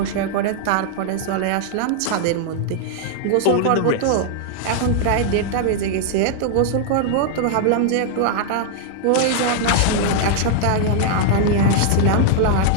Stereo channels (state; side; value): different; both; correlation -0.01